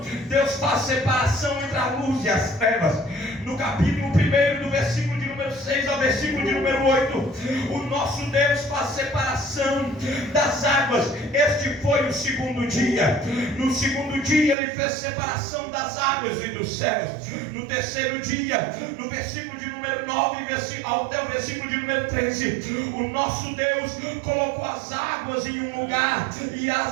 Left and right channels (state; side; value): drops out; left; at 14.6 s